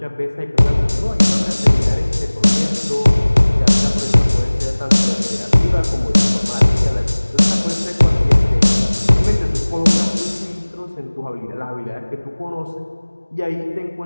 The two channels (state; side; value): inverted; both; correlation -1.00